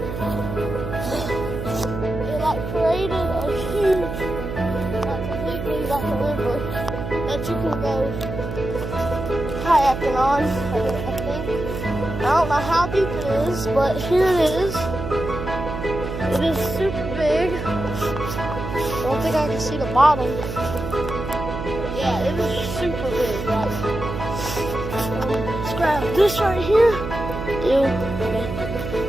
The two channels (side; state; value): right; noise; hum, 6 dB below the sound